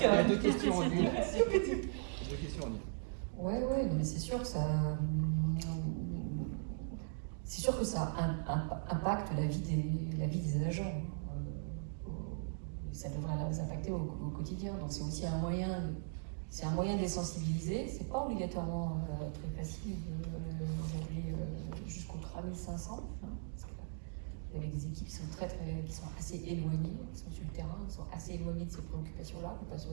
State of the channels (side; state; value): left; silent; digital silence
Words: deux questions en une. Deux questions en une. Ouais, mais c'est sûr que ça. C'est sûr que ça impacte la vie des agents. Ça devrait les impacter au quotidien. Donc c'est aussi un moyen de les sensibiliser. C'est pas obligatoirement très facile aujourd'hui jusqu'aux 3500. Avec des équipes qui sont qui sont assez éloignées, qui sont sur le terrain, qui sont assez éloignées de ces préoccupations-là, qui ne pas sur